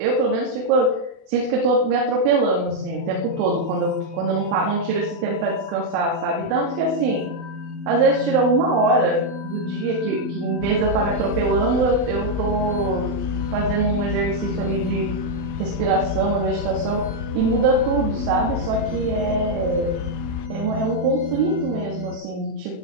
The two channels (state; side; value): late; left; 32 ms